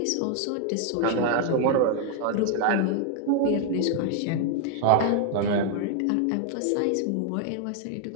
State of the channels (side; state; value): both; different; correlation 0.00